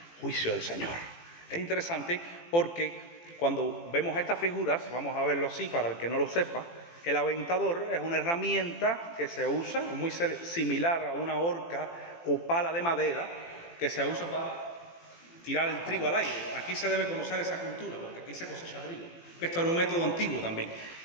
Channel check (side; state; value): right; late; 18 ms